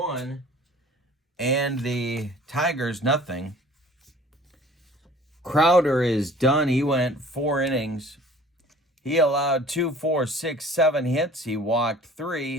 and the Tigers nothing. Crowder is done. He went 4 innings. He allowed 2, 4, 6, 7 hits. He walked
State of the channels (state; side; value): normal; both; correlation 0.48